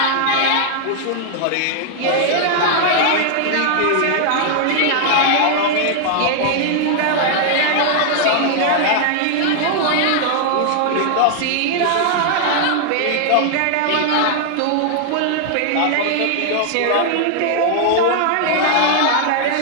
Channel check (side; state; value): both; different; correlation 0.00